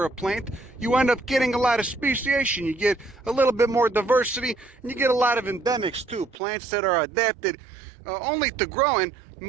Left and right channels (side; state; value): left; drops out; at 6.4 s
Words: a plant, you end up getting a lot of speciation. You get a little bit more diversity, and you get a lot of endemics too. Plants that are adapted only to growing